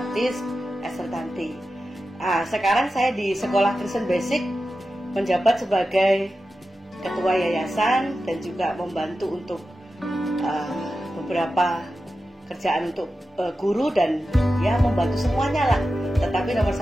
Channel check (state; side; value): normal; both; correlation 0.92